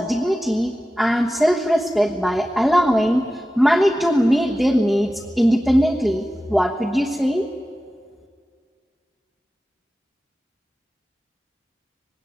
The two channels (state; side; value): normal; both; correlation 0.94